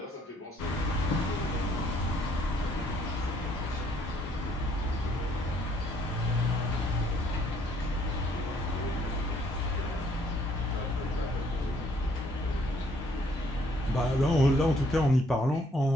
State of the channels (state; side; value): normal; both; correlation 0.65